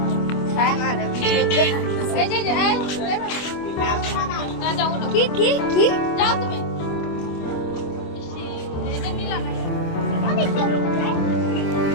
কি কি কি যাও তুমি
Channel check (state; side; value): late; right; 25 ms